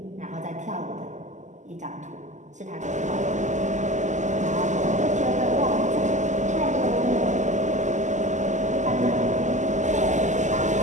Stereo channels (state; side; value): late; left; 0.34 ms